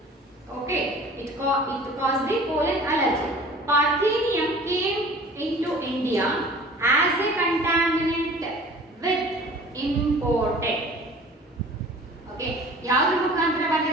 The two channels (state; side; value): normal; both; correlation 0.45